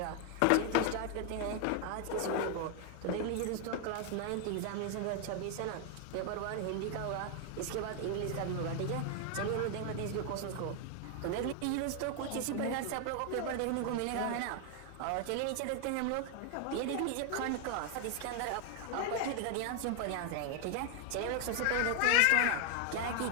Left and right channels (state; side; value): different; both; correlation 0.00